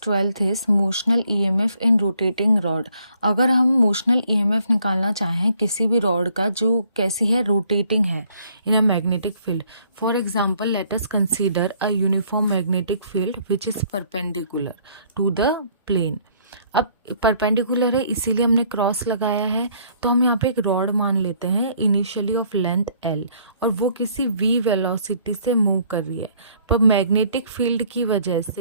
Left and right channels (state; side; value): inverted; both; correlation -0.63